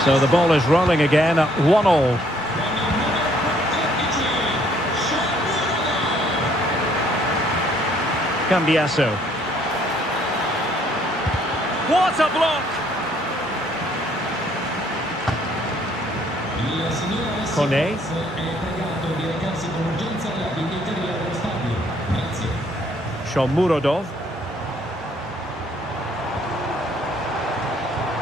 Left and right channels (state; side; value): normal; both; correlation 0.65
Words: So the ball is rolling again at 1-1. Cambiasso. What a block! Kone. Shomurodov.